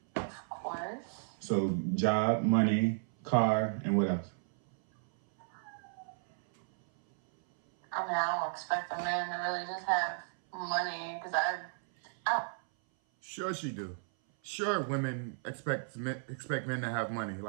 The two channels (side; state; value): left; silent; 55 dB below the other